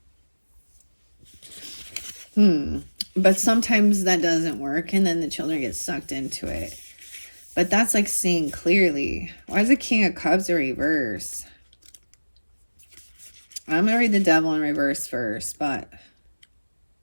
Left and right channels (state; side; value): inverted; both; correlation -1.00